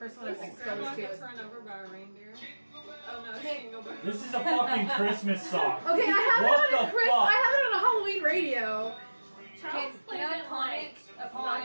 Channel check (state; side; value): inverted; both; correlation -1.00